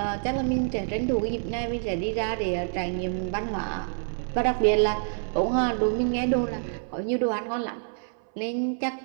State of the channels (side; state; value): left; silent; 60 dB below the other